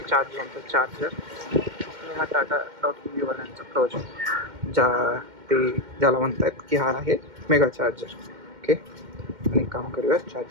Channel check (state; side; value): late; left; 2.1 ms